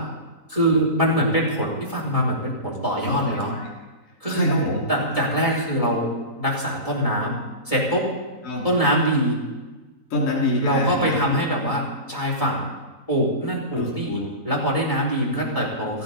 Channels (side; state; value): right; late; 3.9 ms